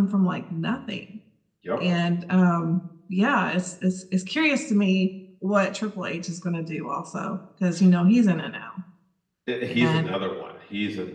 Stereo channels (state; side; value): identical; both; correlation 1.00